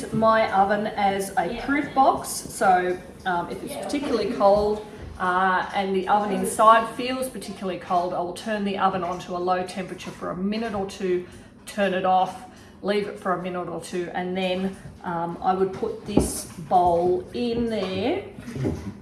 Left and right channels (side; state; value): both; identical; correlation 1.00